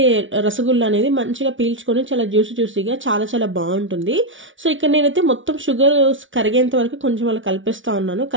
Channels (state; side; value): late; left; 0.56 ms